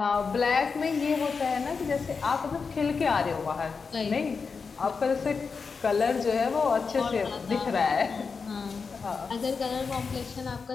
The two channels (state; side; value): quieter; right; 5.1 dB